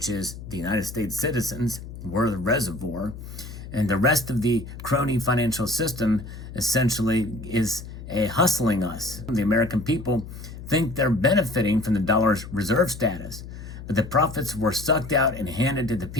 is the United States citizens. We're the reservoir. And the rest of the crony financial system essentially is hustling us. The American people think they're benefiting from the dollar's reserve status, but the profits were sucked out and handed to the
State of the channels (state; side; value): noise; left; hum, 12 dB below the sound